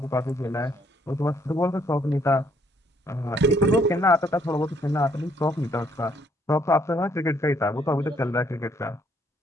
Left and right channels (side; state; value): both; normal; correlation 0.67